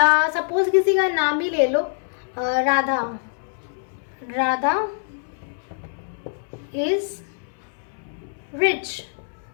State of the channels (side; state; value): right; silent; 62 dB below the other